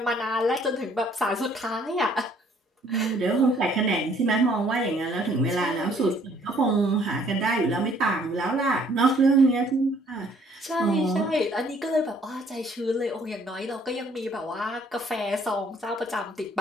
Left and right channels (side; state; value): both; normal; correlation 0.61